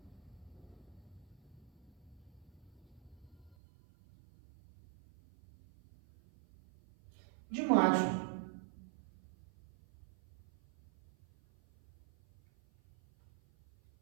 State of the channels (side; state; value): left; drops out; at 3.6 s